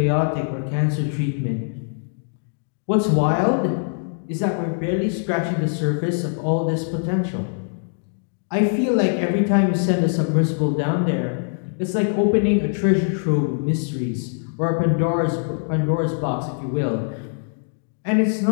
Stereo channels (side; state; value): right; silent; digital silence